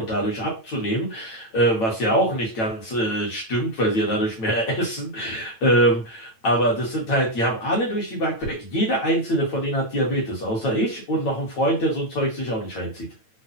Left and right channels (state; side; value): late; right; 9.0 ms